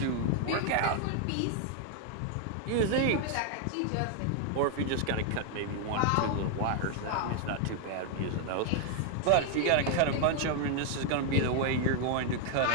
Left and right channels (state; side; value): different; both; correlation 0.00